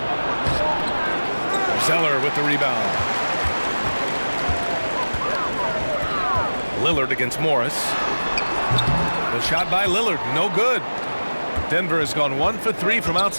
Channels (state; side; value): inverted; both; correlation -1.00